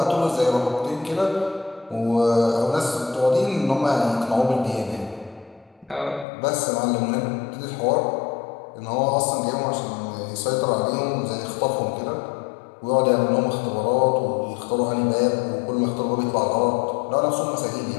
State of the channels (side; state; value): right; drops out; at 6.2 s